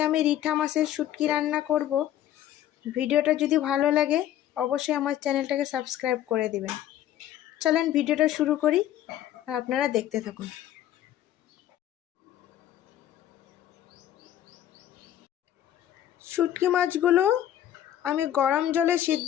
আমি রিঠা মাছের শুটকি রান্না করব। ভিডিওটা যদি ভালো লাগে অবশ্যই আমার চ্যানেলটাকে সাবস্ক্রাইব করে দিবেন। চলেন ভিডিওটা শুরু করি আর আপনারা দেখতে থাকুন। শুটকি মাছগুলো আমি গরম জলে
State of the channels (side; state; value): right; quieter; 11.9 dB